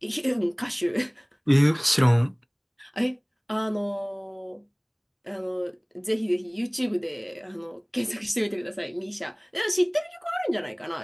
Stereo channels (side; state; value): both; identical; correlation 1.00